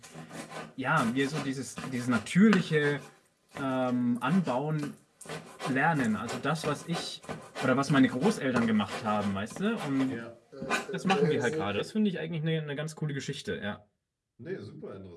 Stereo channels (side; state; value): both; identical; correlation 1.00